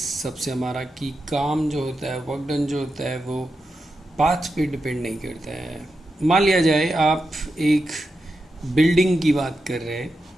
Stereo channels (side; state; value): both; normal; correlation 0.88